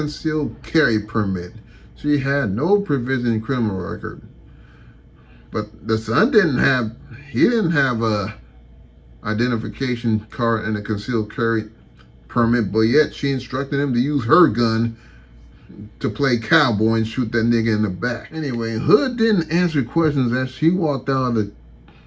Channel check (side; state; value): both; identical; correlation 1.00